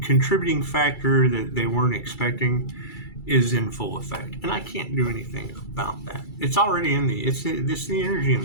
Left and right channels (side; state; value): right; late; 2.3 ms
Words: contributing factor that they weren't expecting is in full effect, and I can't do anything about that. It's already in it's the energy in